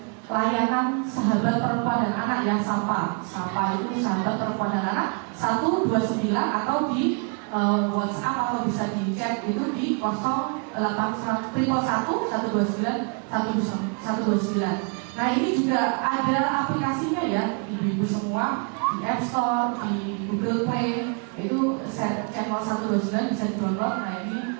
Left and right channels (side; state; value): left; quieter; 38.1 dB